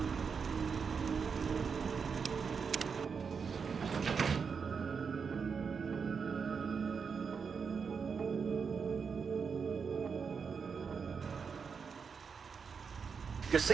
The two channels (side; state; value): left; quieter; 5.9 dB